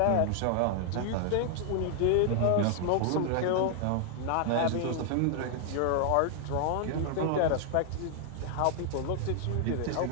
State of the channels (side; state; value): both; different; correlation 0.00